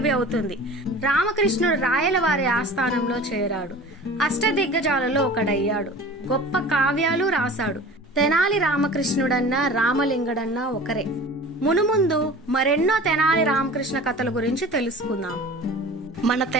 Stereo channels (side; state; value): both; normal; correlation 0.40